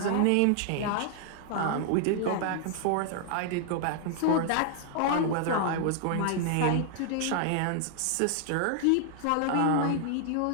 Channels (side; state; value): both; different; correlation 0.00